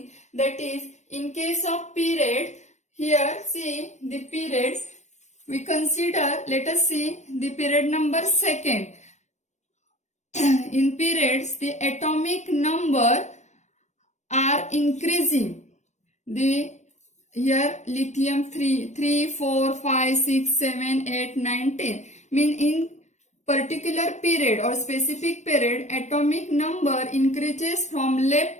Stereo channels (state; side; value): late; right; 0.34 ms